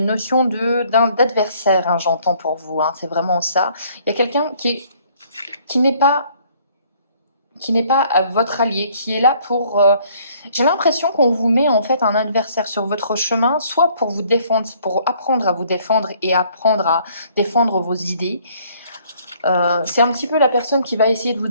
d'adversaire, hein, j'entends pour vous, hein, c'est vraiment ça. Il y a quelqu'un qui n'est pas votre allié, qui est là pour... j'ai l'impression qu'on vous met en fait un adversaire sur votre chemin, soit pour vous défendre, pour apprendre à vous défendre et apprendre à défendre vos idées. C'est un petit peu la personne qui va essayer de vous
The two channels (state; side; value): inverted; both; correlation -0.61